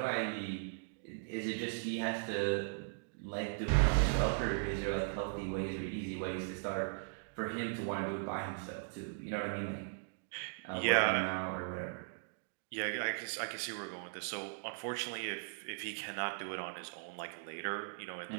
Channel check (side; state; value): left; silent; digital silence